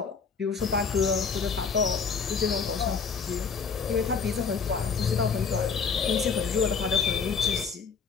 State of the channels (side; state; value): right; quieter; 5.6 dB